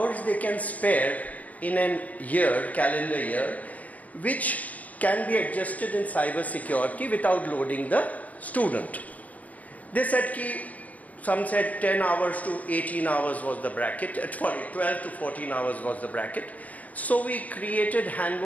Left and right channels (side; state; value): right; late; 0.078 ms